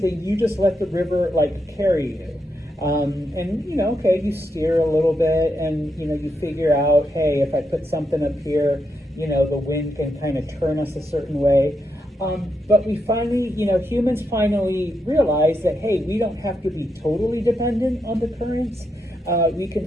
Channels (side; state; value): both; normal; correlation 0.83